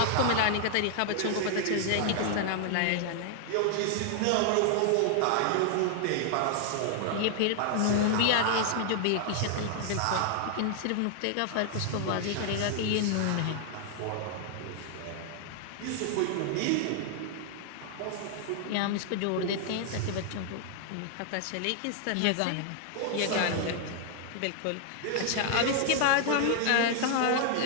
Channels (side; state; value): both; different; correlation 0.00